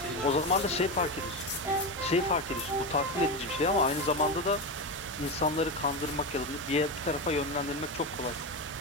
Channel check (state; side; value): normal; both; correlation 0.16